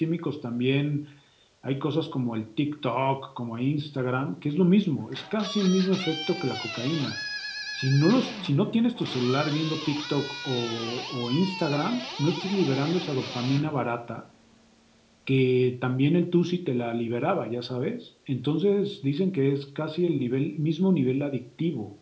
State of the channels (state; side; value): identical; both; correlation 1.00